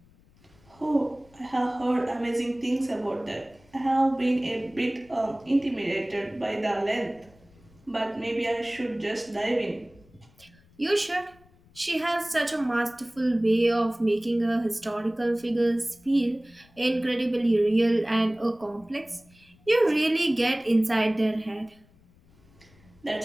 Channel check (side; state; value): left; noise; rumble, 29 dB below the sound